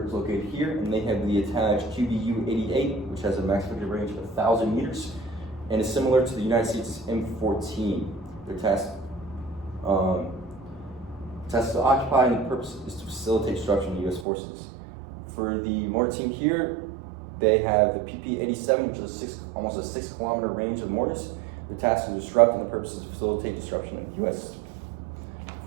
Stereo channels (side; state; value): left; drops out; at 14.2 s